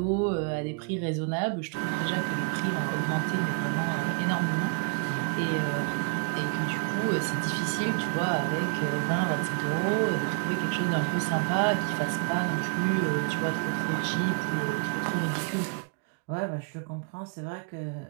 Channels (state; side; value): quieter; left; 35.7 dB